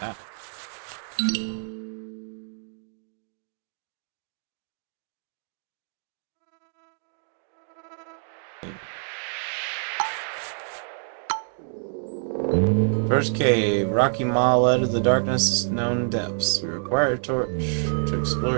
First cave. Rocky Maw led to the darkness known depths. We require a torch to explore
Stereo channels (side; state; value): left; silent; 59 dB below the other